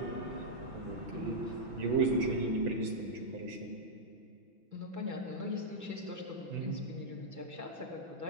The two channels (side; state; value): left; late; 6.0 ms